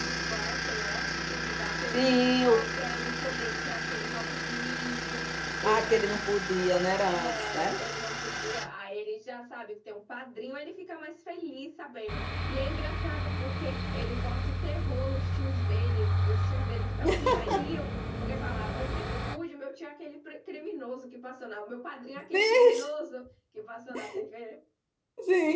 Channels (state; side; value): identical; both; correlation 1.00